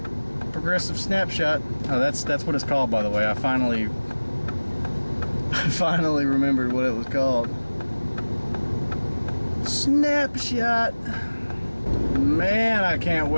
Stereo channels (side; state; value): both; inverted; correlation -1.00